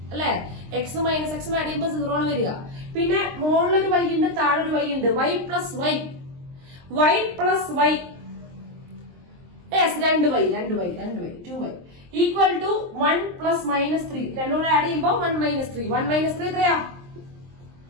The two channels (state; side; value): late; left; 23 ms